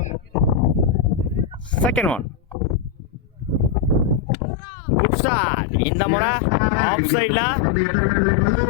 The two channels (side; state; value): right; drops out; at 4.3 s